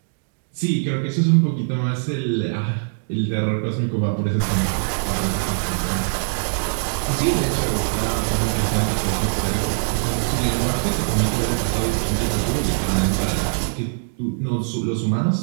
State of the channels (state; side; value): silent; left; digital silence